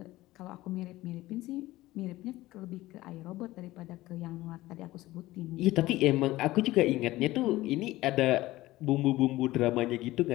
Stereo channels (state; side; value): quieter; right; 17.4 dB